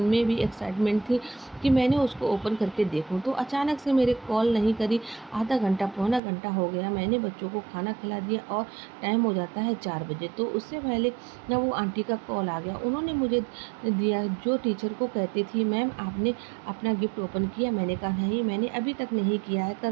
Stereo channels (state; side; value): drops out; left; at 6.2 s